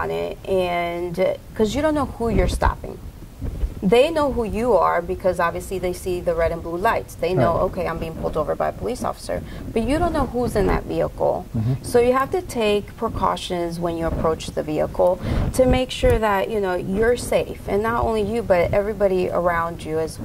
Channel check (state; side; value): identical; both; correlation 1.00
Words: it, and because you don't know who you're stopping. They know who you are because obviously they see the red and blue lights. They know, okay, I'm being pulled over by a police officer, but you don't know who's in that vehicle. So you have to take precautions when you approach the vehicle to make sure that, you know, you're safe, and not only you, but everybody around you as